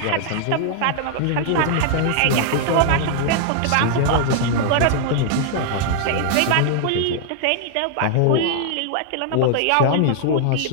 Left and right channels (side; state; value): both; different; correlation 0.00